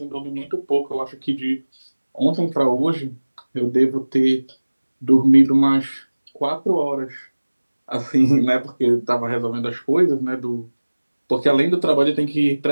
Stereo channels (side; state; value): both; inverted; correlation -1.00